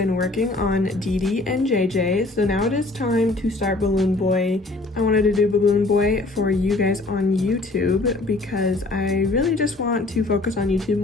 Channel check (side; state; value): right; quieter; 3.1 dB